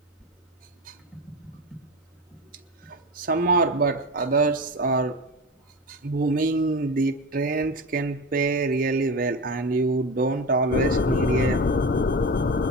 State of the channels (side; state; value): both; normal; correlation 0.25